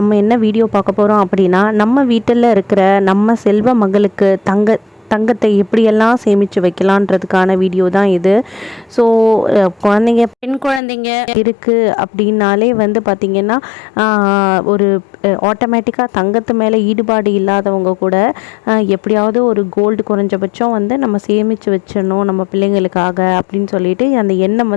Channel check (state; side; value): drops out; right; at 10.8 s